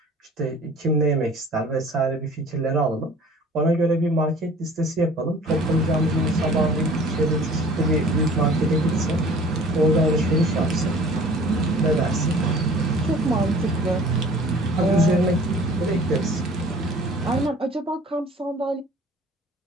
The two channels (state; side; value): normal; both; correlation 0.47